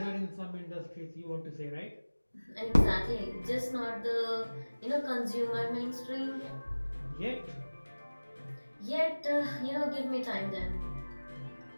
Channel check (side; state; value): both; inverted; correlation -1.00